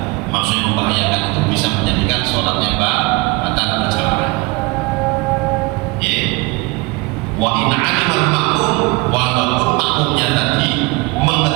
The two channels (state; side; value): quieter; left; 25.1 dB